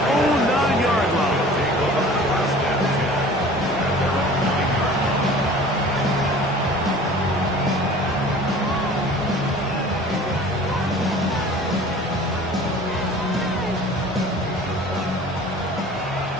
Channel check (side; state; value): both; normal; correlation 0.45